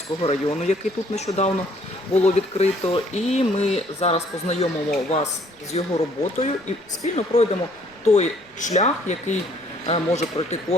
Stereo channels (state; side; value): noise; right; rumble, 30 dB below the sound